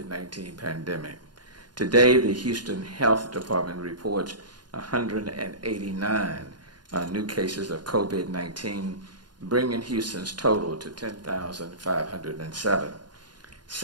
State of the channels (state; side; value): late; left; 0.71 ms